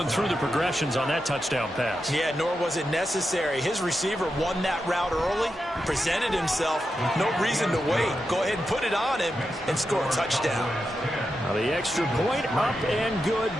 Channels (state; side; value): noise; right; hum, 27 dB below the sound